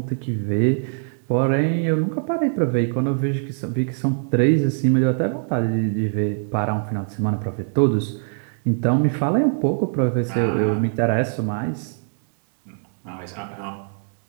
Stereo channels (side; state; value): left; silent; digital silence